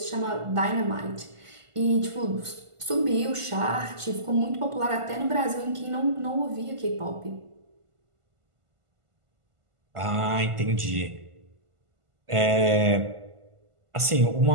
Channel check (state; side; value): late; left; 1.5 ms